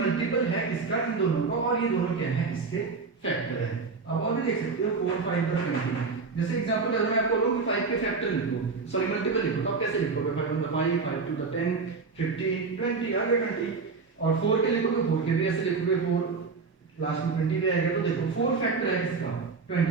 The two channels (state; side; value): quieter; left; 4.6 dB